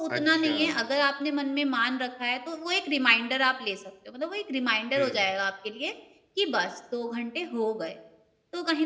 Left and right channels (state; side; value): identical; both; correlation 1.00